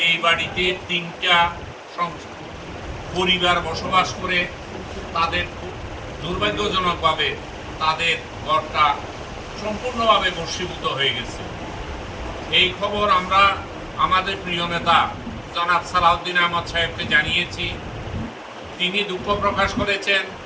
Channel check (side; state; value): both; identical; correlation 1.00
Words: বাড়িতে 3টা পরিবার বসবাস করে, তাদের দুর্ভাগ্যজনকভাবে তাদের ঘরটা সম্পূর্ণভাবে ভস্মীভূত হয়ে গেছে। এই খবর আমরা আমাদের প্রিয় নেতা জনাব সালাউদ্দিন আহমদ সাহেবকে জানিয়েছি। তিনি দুঃখ প্রকাশ করেছেন